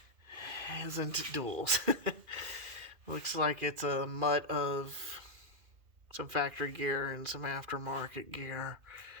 isn't duals. Looks like it's a mutt of some factory gear and some aftermarket gear.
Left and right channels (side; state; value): left; late; 2.4 ms